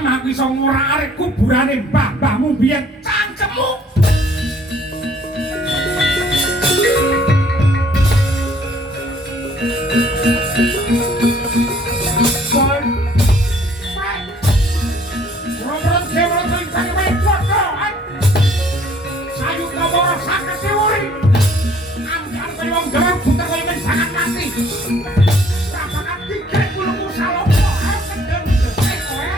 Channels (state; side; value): normal; both; correlation 0.59